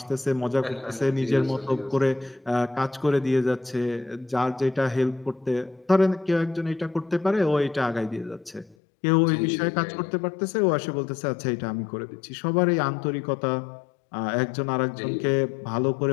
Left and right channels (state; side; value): drops out; right; at 8.8 s